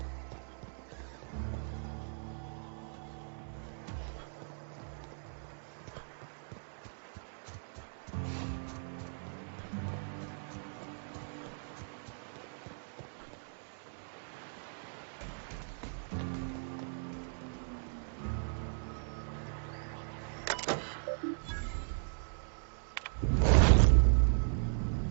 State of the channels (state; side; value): silent; left; digital silence